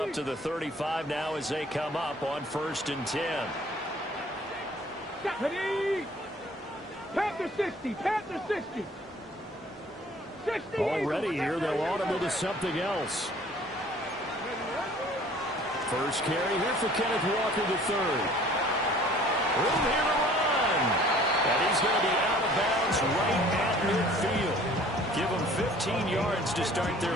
to the 35 now as they come up on 1st and 10. Ready? Panther 60. Panther 60. 60. Already here, they'll audible to something else. First carry here for Kenneth Walker III. Room here to run. And he's going to be out of bounds right at midfield. Give them 15 yards to start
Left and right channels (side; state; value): both; normal; correlation 0.52